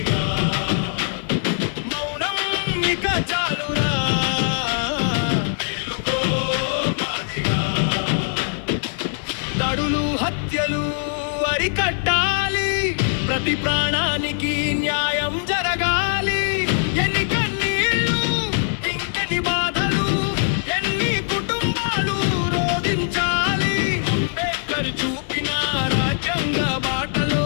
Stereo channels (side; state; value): right; silent; digital silence